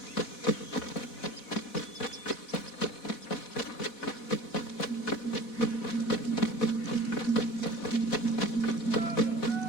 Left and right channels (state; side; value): late; right; 4.1 ms